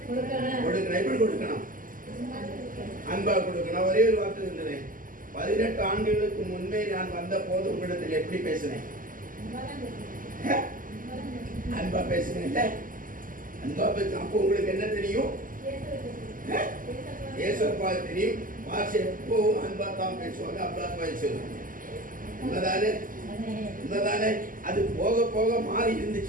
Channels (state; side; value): late; left; 0.40 ms